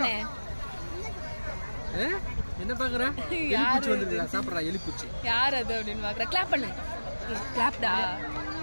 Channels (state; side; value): inverted; both; correlation -1.00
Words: என்ன பாக்குற? எலிப்பூச்சி வந்துருக்குடா. சாப்பிடுறா எலிப்பூச்சி. யார் அது அப்படின்னு பாக்குற? கிளாப் பண்ணு. கிளாப்டா.